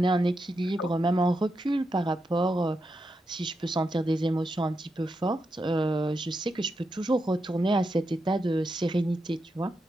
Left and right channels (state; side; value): normal; both; correlation 0.86